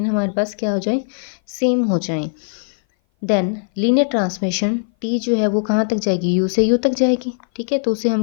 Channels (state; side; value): silent; right; 58 dB below the other